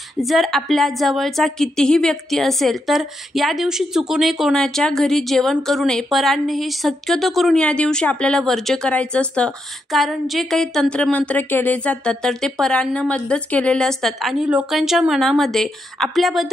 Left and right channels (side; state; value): both; normal; correlation 0.82